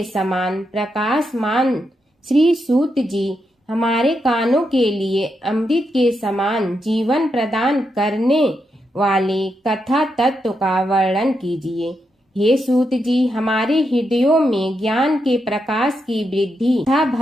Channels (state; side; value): normal; both; correlation 0.83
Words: समान प्रकाशमान श्री सूत जी हमारे कानों के लिए अमृत के समान जीवन प्रदान करने वाले कथा तत्व का वर्णन कीजिए। हे सूत जी, हमारे हृदयों में ज्ञान के प्रकाश की वृद्धि तथा